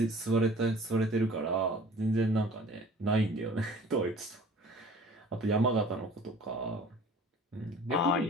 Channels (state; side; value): normal; both; correlation 0.47